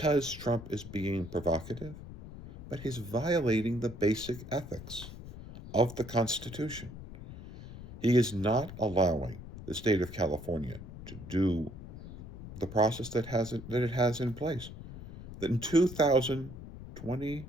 Trump is being provocative, but he's violating the basic ethics of the Constitution. He is not allowing the state of California to do the process that it has in place. That in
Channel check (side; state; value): left; noise; rumble, 13 dB below the sound